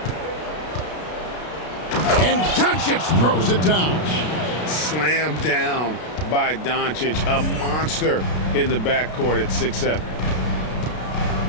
And Doncic throws it down. Slammed down by Doncic, a monster in the backcourt at 6'7".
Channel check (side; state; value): right; late; 33 ms